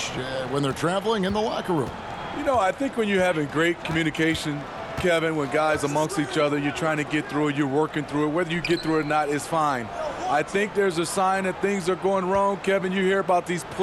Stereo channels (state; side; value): identical; both; correlation 1.00